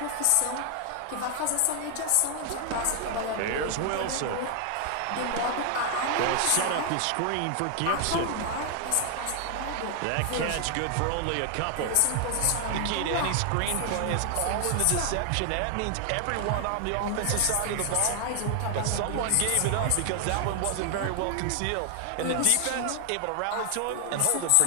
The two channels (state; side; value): different; both; correlation 0.00